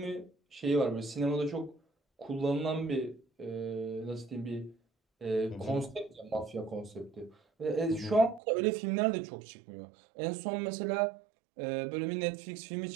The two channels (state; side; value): drops out; left; at 8.4 s